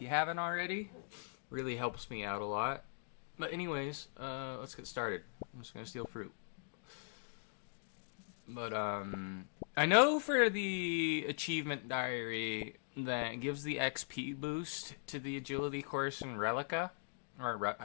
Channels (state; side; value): silent; right; digital silence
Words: you haven't already. Really helps me out a lot. But anyways, let's get started. I'm just gonna steal fruit. But, I know for the achievement diary that gives the XP boost to the agility course in Relica. Or,